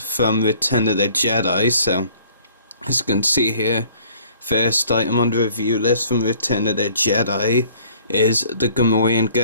Return of the Jedi. So as you can see here, first item on the review list from Return of the Jedi is the Gamorrean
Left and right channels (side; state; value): both; inverted; correlation -0.56